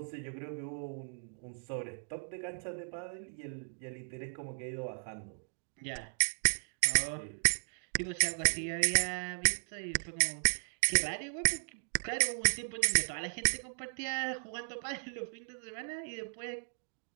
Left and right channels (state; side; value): silent; left; digital silence